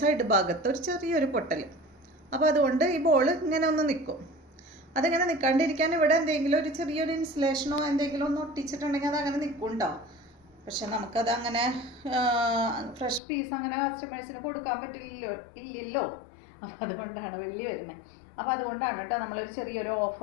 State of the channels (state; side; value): drops out; right; at 13.2 s